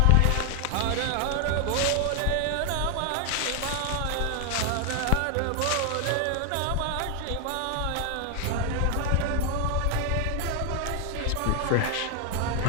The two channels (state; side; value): different; both; correlation 0.00